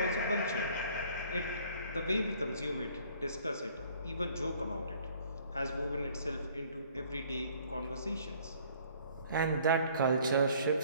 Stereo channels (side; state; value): both; inverted; correlation -0.57